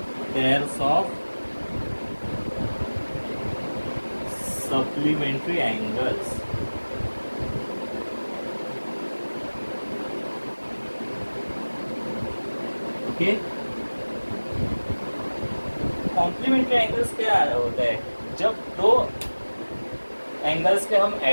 pairs of supplementary angles। ओके, कॉम्प्लीमेंट्री एंगल्स क्या होता है, जब दो एंगल्स के हम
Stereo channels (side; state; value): both; inverted; correlation -1.00